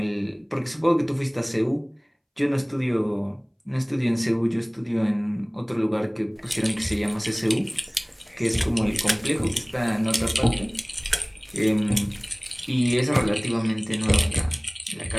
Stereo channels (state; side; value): identical; both; correlation 1.00